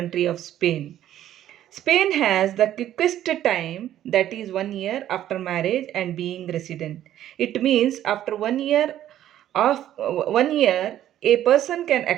of Spain. Spain has the quickest time, that is 1 year after marriage and being resident. It means after 1 year a person can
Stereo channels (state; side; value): quieter; left; 12.0 dB